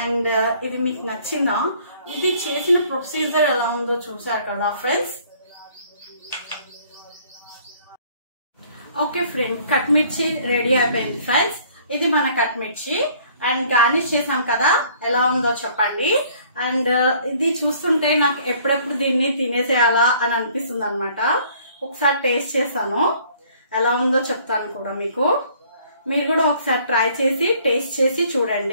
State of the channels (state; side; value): inverted; both; correlation -0.58